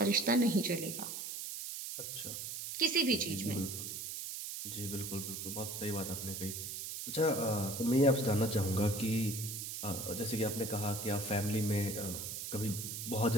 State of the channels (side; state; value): right; noise; hiss, 6 dB below the sound